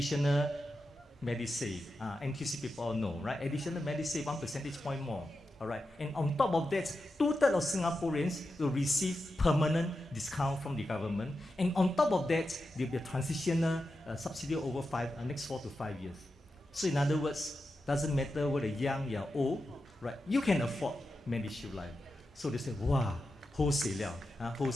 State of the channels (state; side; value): normal; both; correlation 0.89